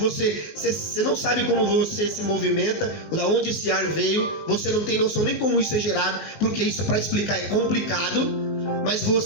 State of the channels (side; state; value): right; late; 19 ms